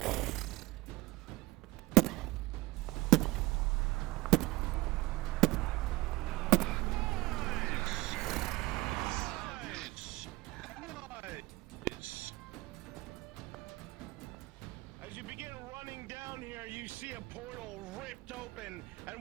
As you begin running down here, you see a portal ripped open,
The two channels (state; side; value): quieter; left; 20.1 dB